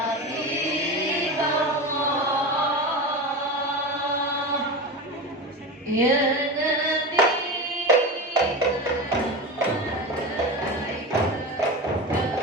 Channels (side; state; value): both; normal; correlation 0.24